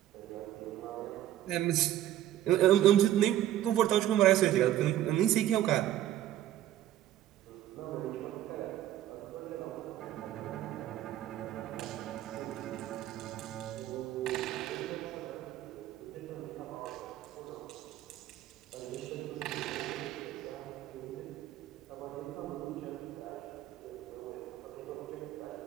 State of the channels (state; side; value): quieter; left; 12.7 dB